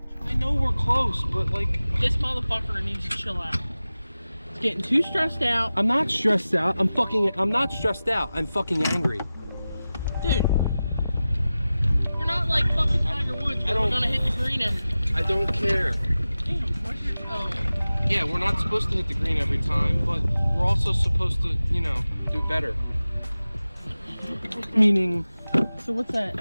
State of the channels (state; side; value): inverted; both; correlation -0.95